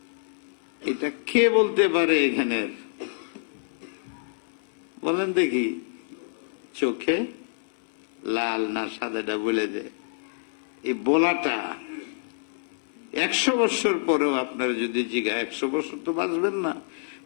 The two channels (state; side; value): silent; right; digital silence